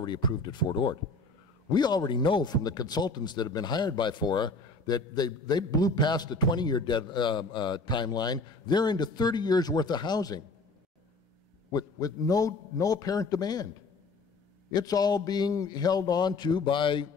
approved at Fort Ord. We already know from the consultants that have been hired by FORA that they blew past the 20-year timeline. They're into 30 years worth of housing with no apparent demand. It's all being held on to by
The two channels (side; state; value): right; quieter; 3.6 dB